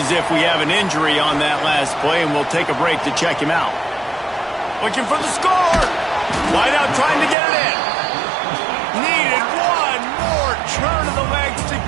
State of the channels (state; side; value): drops out; left; at 7.4 s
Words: if we have an injury on that last play, and we'll take a break to check him out. Looking for the score. Wide out trying to get it in. Needed one more turn of the legs to